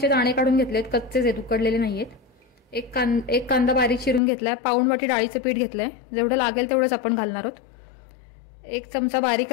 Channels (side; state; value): right; drops out; at 4.2 s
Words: दाणे काढून घेतलेत, कच्चेच आहेत, उकडलेले नाहीयेत. एक कांदा बारीक चिरून घेतलाय. पाऊण वाटी डाळीचं पीठ घेतलंय, जेवढं लागेल तेवढंच आपण घालणार आहोत. 1 चमचा बारीक